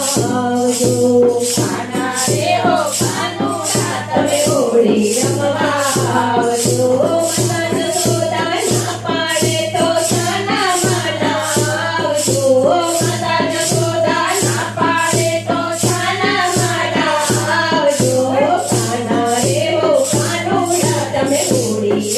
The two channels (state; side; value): identical; both; correlation 1.00